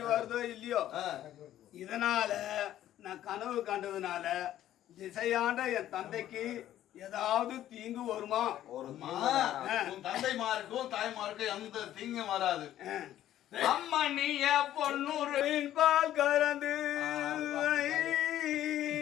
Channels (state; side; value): quieter; right; 12.5 dB